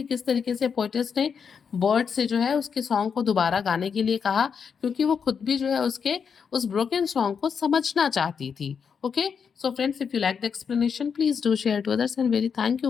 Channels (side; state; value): right; quieter; 6.5 dB